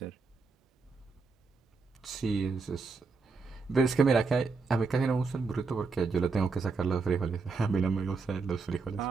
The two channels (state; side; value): quieter; left; 4.5 dB